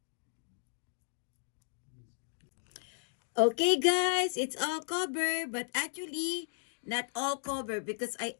Okay, guys, it's all covered, but actually not all covered because I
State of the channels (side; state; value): right; silent; digital silence